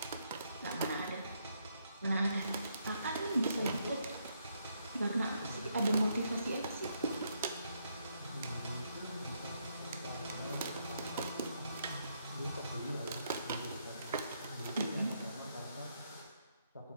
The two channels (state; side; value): inverted; both; correlation -0.76